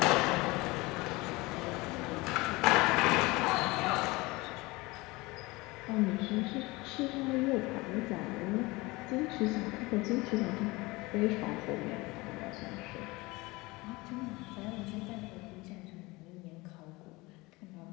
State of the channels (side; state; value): right; quieter; 22.7 dB